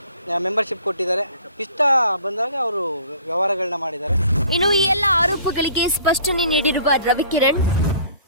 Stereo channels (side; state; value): both; inverted; correlation -0.52